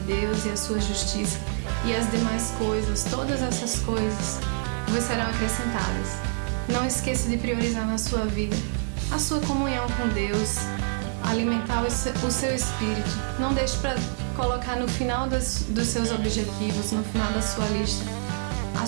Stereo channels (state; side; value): silent; left; digital silence